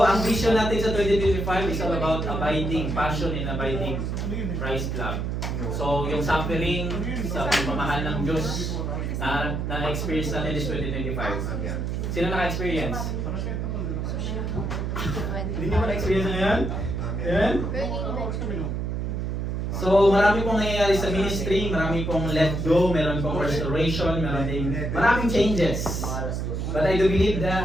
ang vision natin sa 2025 is all about abiding, passion in abiding Christ love. So, yung suffering sa pagmamahal ng Diyos na-experience natin is 2025. Sino naka-experience? Hindi nyo ba na-experience ngayon? Amen? So, marami pong nangyayari sa ministry, marami pong let go, meron pong restoration, maraming changes. But I do believe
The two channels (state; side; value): noise; right; hum, 2 dB below the sound